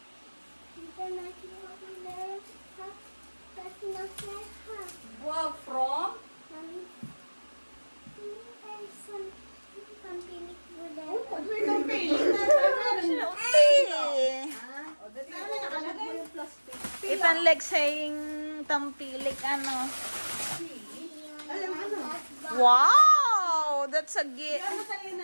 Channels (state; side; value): inverted; both; correlation -1.00